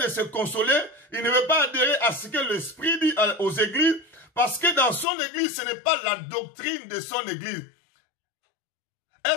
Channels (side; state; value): right; drops out; at 5.1 s